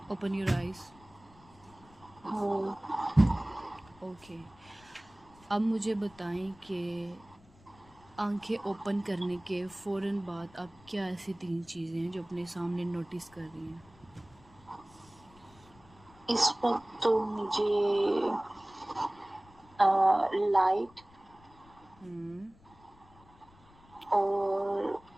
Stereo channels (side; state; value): left; noise; rumble, 26 dB below the sound